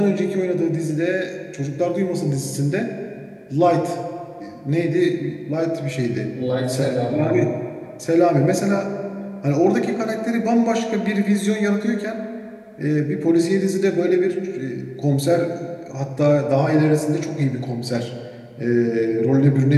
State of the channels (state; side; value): identical; both; correlation 1.00